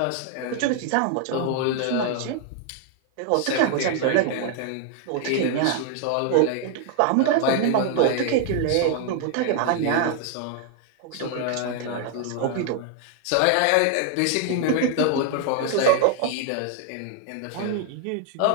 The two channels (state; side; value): different; both; correlation 0.00